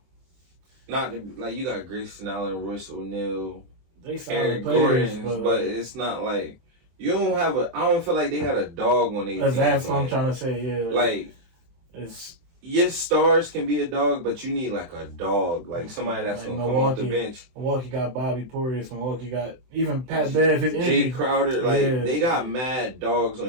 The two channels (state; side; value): late; left; 23 ms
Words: Not to, like you got Grayson Allen, Royce O'Neal, They solid Eric players, Gordon, but it's not like you don't have a. I don't feel like they got a dog on their team. That's what I'm trying to say. Yeah, like it's. Yes, stars can be a dog, but you need like a dog, like somebody that's gonna come off the bench. Milwaukee got Bobby Portis. Milwaukee got even Pat Bev. His Jay Crowder. Like they got mad dogs